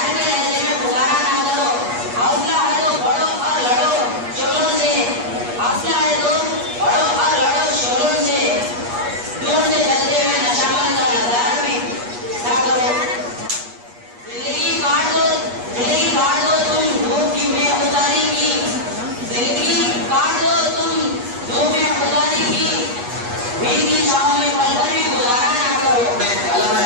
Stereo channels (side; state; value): left; late; 8.3 ms